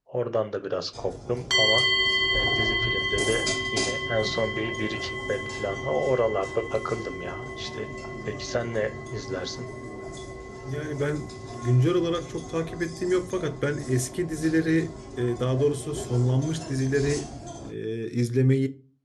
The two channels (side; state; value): both; identical; correlation 1.00